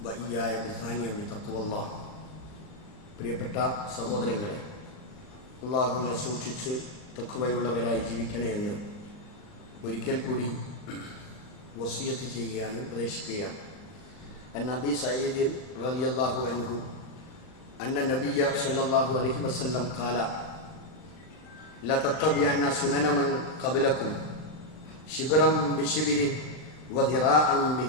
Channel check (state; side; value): late; right; 39 ms